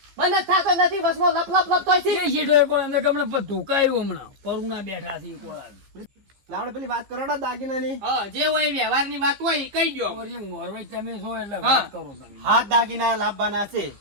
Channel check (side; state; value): left; late; 15 ms